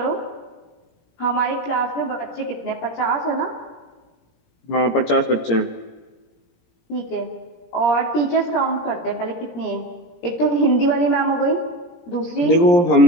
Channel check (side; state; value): right; late; 17 ms